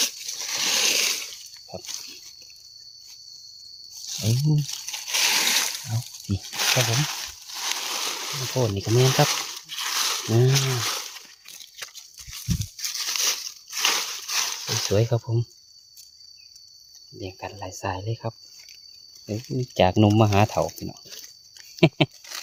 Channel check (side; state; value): both; identical; correlation 1.00